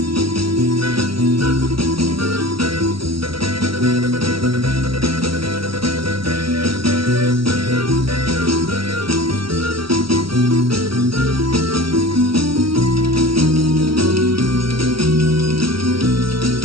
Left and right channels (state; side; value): late; left; 0.75 ms